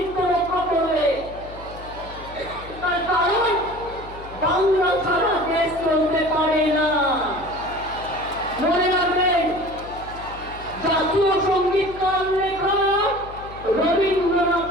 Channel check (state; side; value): noise; left; hum, 16 dB below the sound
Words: রক্ষা করবে। তার কারণ বাংলা ছাড়া দেশ চলতে পারে না। মনে রাখবেন, জাতীয় সঙ্গীত কার লেখা? রবীন্দ্রনাথ